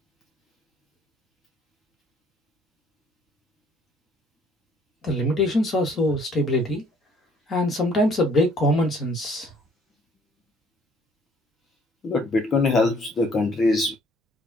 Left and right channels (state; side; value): normal; both; correlation 0.61